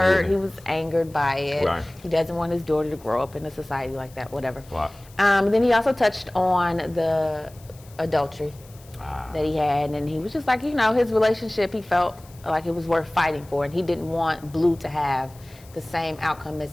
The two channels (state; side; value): noise; left; hiss, 25 dB below the sound